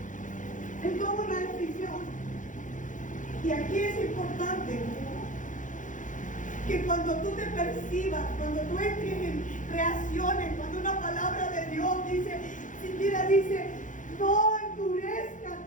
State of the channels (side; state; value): right; late; 0.37 ms